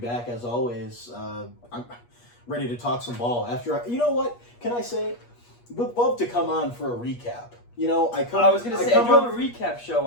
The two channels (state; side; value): late; right; 8.4 ms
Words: as always. I'm ready to talk some ball. You know what? Can I say? Would love to come on for a recap. You know, I do have a recap show